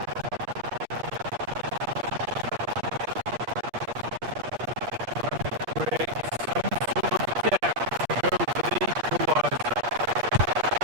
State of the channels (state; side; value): late; left; 8.4 ms